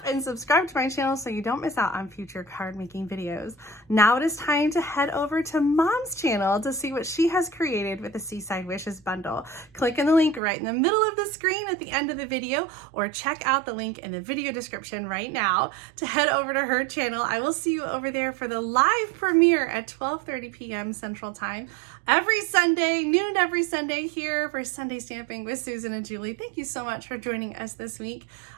and subscribe to my channel so you don't miss out on future card making videos. Now it is time to head over to Mom's channel to see what she has created with the Seaside Wishes Bundle. Click on the link right in the middle of the screen at the end of the video, or check out the link in the video description right now to head over to her channel. I will see you over there for the live premiere at 12:30 p.m. Central Time every Sunday, noon every Sunday here for Sunday Stamping with Susan and Julie. Thank you so much for joining us this week.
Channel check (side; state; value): left; drops out; at 10.4 s